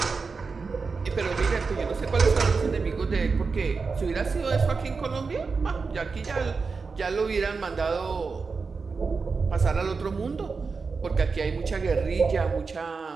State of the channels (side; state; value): left; quieter; 4.7 dB